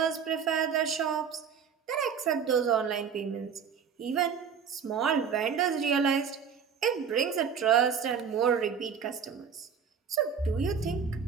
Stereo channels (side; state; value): left; quieter; 6.9 dB